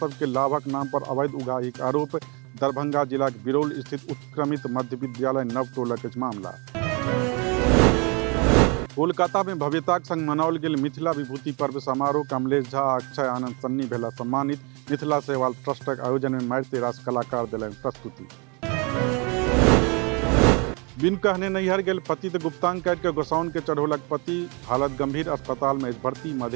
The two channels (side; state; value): left; quieter; 31.2 dB